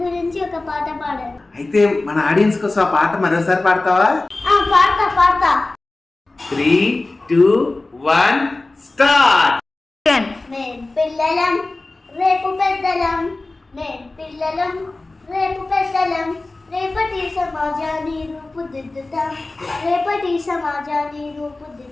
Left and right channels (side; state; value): right; quieter; 3.1 dB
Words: గురించి ఒక పాట పాడాను. అయితే మన ఆడియన్స్ కోసం ఆ పాట మరోసారి పాడతావా? పాడతా. 3, 2, 1 స్టార్ట్. మేం పిల్లలం రేపు పెద్దలం, మేం పిల్లలం రేపు పెద్దలం, రేపటి సమాజాన్ని రూపుదిద్దుతాం, రేపటి సమాజాన్ని